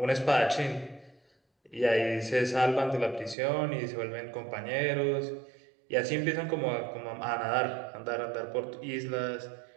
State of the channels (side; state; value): left; drops out; at 3.4 s